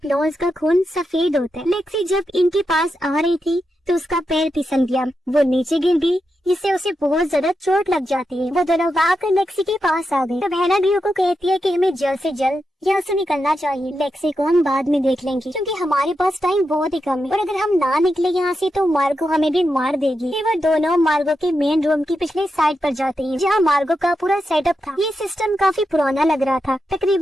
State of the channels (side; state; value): both; normal; correlation 0.87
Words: का खून सफेद होता है। लेक्सी जब इनके पास आ रही थी तो उसका पैर फिसल गया, वो नीचे गिर गई, जिससे उसे बहुत ज्यादा चोट लग जाती है। वो दोनों भागकर लेक्सी के पास आ गए। तब हैना ड्रियो को कहती है कि हमें जल्द से जल्द यहाँ से निकलना चाहिए, लेक्सी को हम बाद में देख लेंगे क्योंकि हमारे पास टाइम बहुत ही कम है और अगर हम ना निकले यहाँ से तो मार्गो हमें भी मार देगी। फिर वो दोनों मार्गो के मेन रूम की पिछले साइड पर जाते हैं, जहाँ मार्गो का पूरा सेटअप था। ये सिस्टम काफी पुराना लग रहा था,